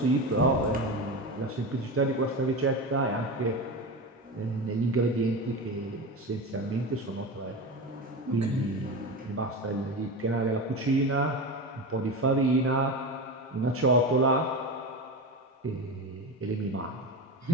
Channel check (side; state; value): both; normal; correlation 0.23